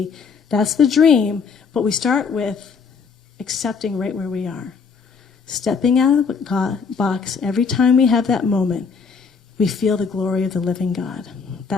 That's the dream, but we start with accepting right where we are. Stepping out of the box every time we have that moment. We feel the glory of the living God.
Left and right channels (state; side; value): quieter; right; 5.5 dB